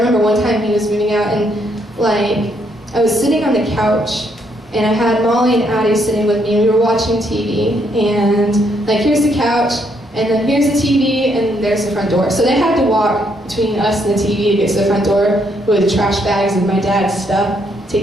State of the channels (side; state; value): both; normal; correlation 0.73